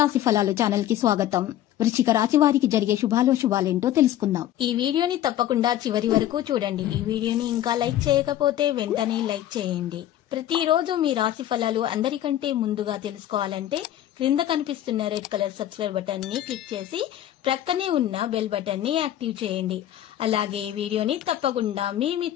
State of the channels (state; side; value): quieter; right; 12.4 dB